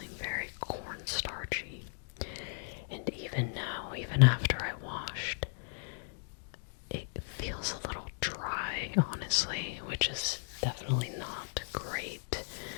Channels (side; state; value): right; silent; digital silence